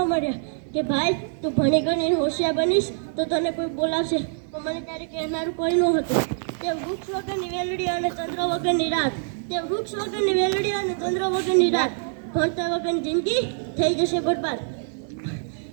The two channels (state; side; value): silent; left; 58 dB below the other